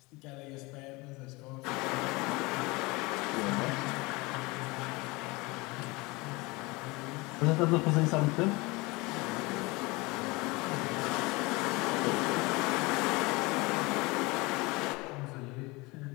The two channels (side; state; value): right; quieter; 24.3 dB